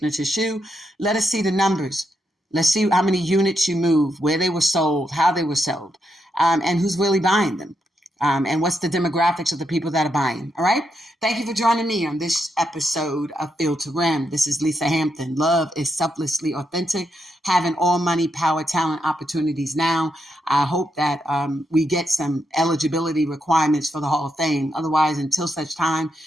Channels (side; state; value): both; normal; correlation 0.82